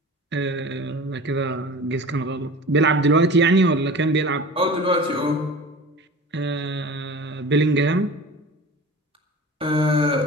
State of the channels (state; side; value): normal; both; correlation 0.37